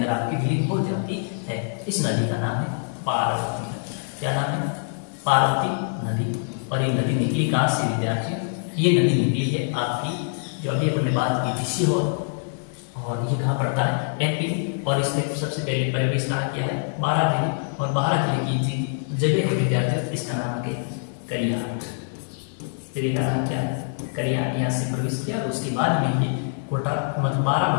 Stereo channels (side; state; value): right; silent; digital silence